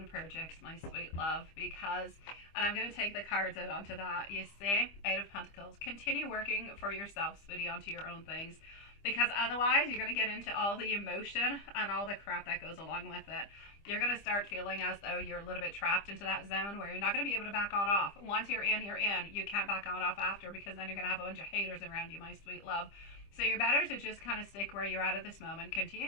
projects, my sweet love, because, and I'm going to take the cards out onto that, you see, Eight of Pentacles. Continue working for yourself, sweetie, onto your own things, because otherwise you're going to get into all the emotion and all the crap that goes along with it. You're going to start feeling as though you're a little bit trapped into that zone where you're not going to be able to back on off. Once you're in, you're in. You can't back on off after, because then you're going to have a bunch of haters around you, my sweet love. So you're better to just kind of stick where you're at this moment.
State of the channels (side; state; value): right; late; 25 ms